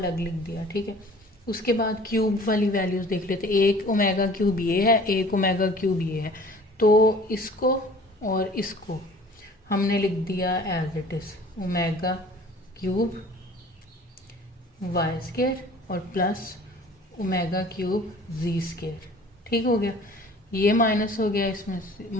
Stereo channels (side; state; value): both; normal; correlation 0.48